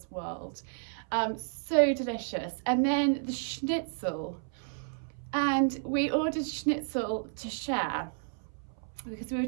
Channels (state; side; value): silent; left; 57 dB below the other